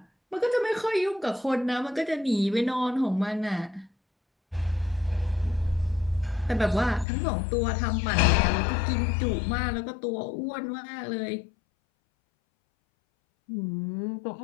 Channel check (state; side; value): drops out; right; at 7.1 s